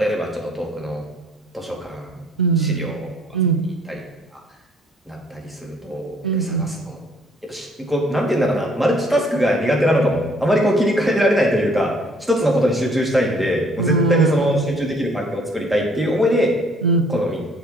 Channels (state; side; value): normal; both; correlation 0.61